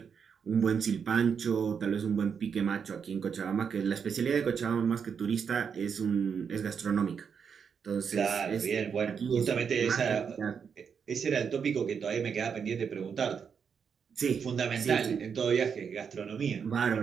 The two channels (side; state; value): left; quieter; 6.7 dB